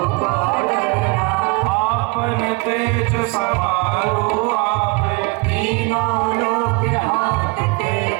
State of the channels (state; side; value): quieter; left; 26.9 dB